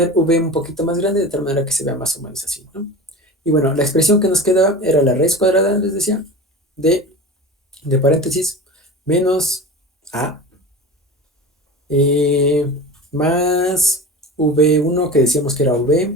V un poquito más grande de tal manera que se vea más o menos así, ¿no? Y bueno, la expresión que nos quedaba era la raíz cuadrada, les decía, de paréntesis, menos A, eh, más V1 que decíamos que era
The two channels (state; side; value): normal; both; correlation 0.32